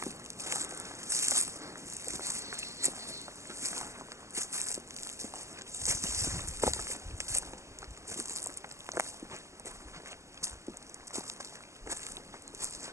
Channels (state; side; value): late; left; 0.14 ms